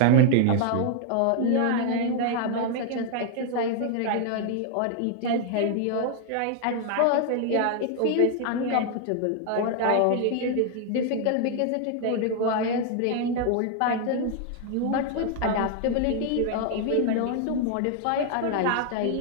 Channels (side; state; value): both; different; correlation 0.00